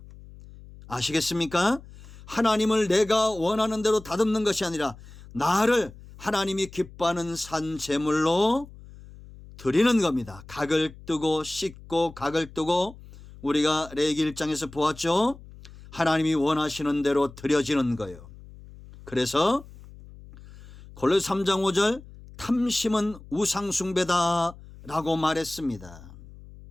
아시겠습니까? 하나님을 내가 원하는 대로 다듬는 것이 아니라 나를 하나님이 기뻐하는 산 제물로 드리는 겁니다. 각을 뜨고 씻고 각을 뜨고 우리가 레위기 1장에서 보았죠. 하나님이 원하시는 대로 드려지는 거예요. 그래서 골로새 3장 5절 탐심은 우상숭배다라고 말했습니다.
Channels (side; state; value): left; noise; hum, 19 dB below the sound